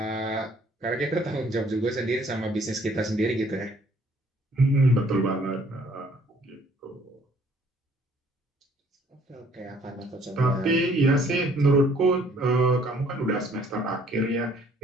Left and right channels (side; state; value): both; normal; correlation 0.61